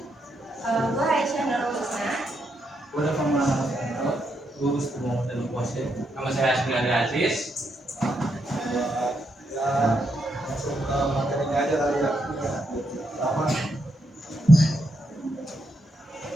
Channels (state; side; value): normal; both; correlation 0.80